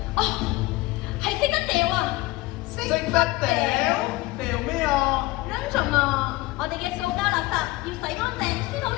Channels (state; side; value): quieter; right; 19.9 dB